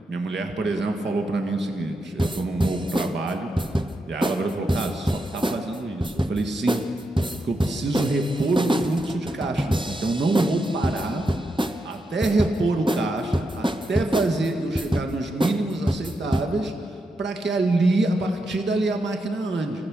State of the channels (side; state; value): both; normal; correlation 0.84